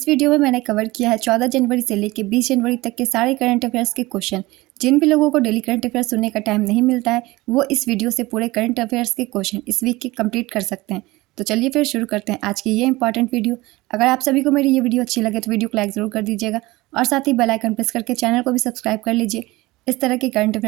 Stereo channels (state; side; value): quieter; left; 20.4 dB